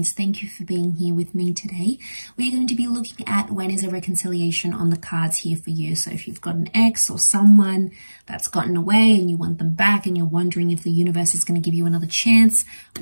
Thank you for being here with me today. We're going to be looking at when is a reconciliation on the cards here for you. So if you've got an ex or someone that's gotten away and you want them back and you're wondering if the universe is going to give you another chance,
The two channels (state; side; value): inverted; both; correlation -1.00